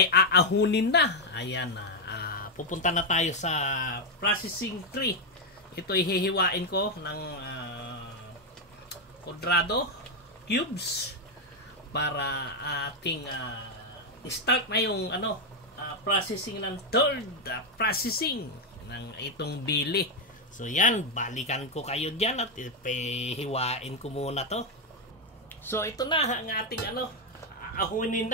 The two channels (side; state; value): both; normal; correlation 0.03